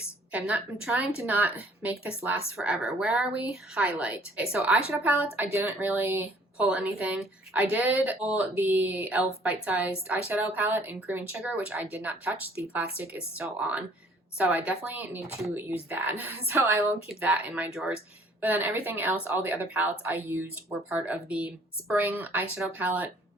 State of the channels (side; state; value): both; normal; correlation 0.58